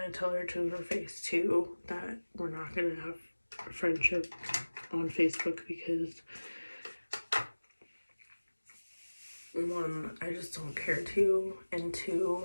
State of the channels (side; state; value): both; inverted; correlation -1.00